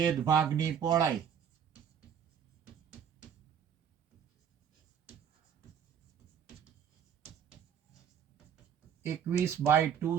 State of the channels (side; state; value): left; quieter; 8.2 dB